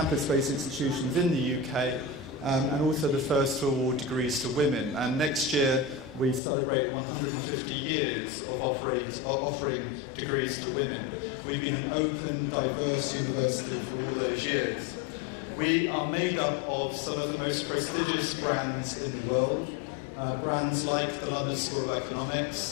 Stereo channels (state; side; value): drops out; right; at 6.4 s